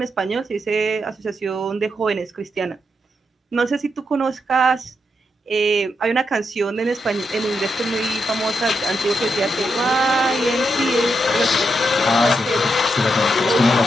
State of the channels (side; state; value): both; normal; correlation 0.83